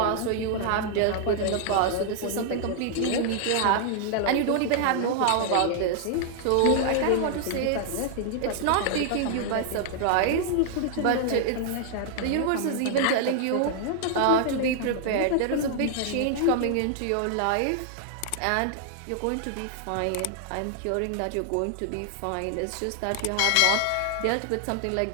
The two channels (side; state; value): both; different; correlation 0.00